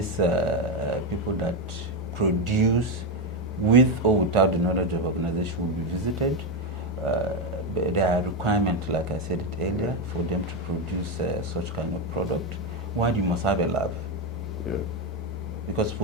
people that produce with or without the knowledge of organization will be visited. There are requirements, like I said it earlier, for them to produce such kind of product. One, you must have a lab. Yeah. Because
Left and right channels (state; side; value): normal; both; correlation 0.08